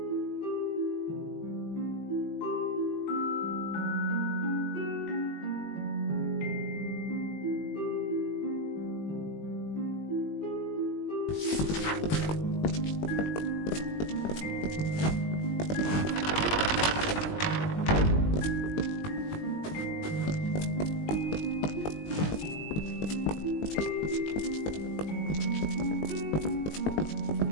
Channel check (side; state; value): right; late; 19 ms